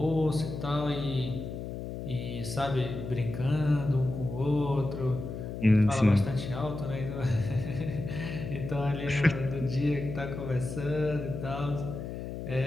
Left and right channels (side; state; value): left; noise; hum, 7 dB below the sound